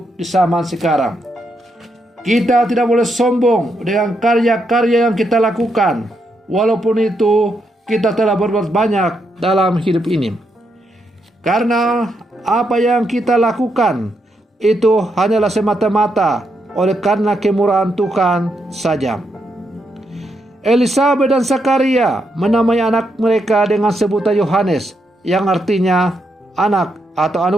di zaman sekarang. Kita tidak boleh sombong dengan karya-karya yang kita lakukan, walaupun itu kita telah berbuat banyak dalam hidup ini. Karena apa yang kita lakukan itu hanyalah semata-mata oleh karena kemurahan Tuhan saja. Elisabet dan Zakaria menamai anak mereka dengan sebutan Yohanes, yang artinya anak atau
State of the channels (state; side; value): normal; both; correlation 0.80